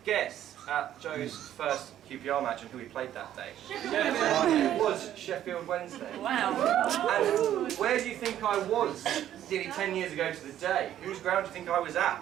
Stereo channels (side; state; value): left; quieter; 11.6 dB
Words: guess at Joe's first QPR match and who he played that day? It was Sheffield Wednesday. Wow. And where do you think I was nearly 10 years ago to the day? Whose ground do you think I was